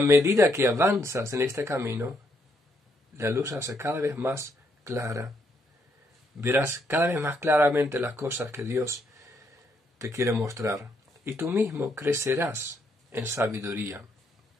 que avanzas en este camino, la luz se hace cada vez más clara. Verás cada vez más claramente las cosas que Dios te quiere mostrar. Y tú mismo crecerás en sabiduría.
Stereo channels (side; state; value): both; normal; correlation 0.74